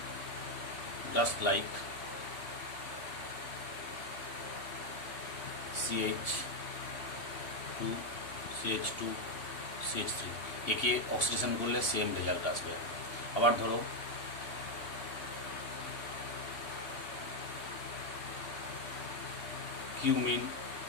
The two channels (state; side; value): late; right; 3.1 ms